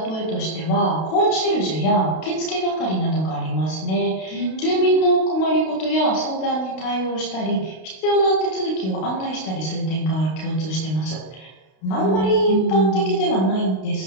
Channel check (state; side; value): late; right; 32 ms